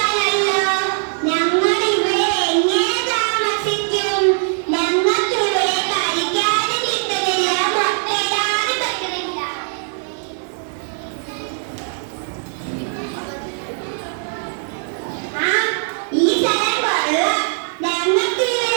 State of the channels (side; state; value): left; silent; digital silence